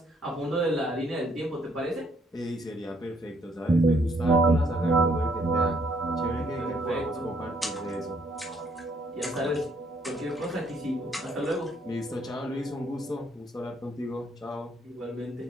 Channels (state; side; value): normal; both; correlation 0.68